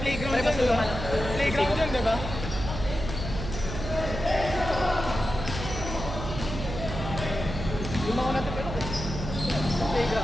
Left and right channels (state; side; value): noise; right; hum, 6 dB below the sound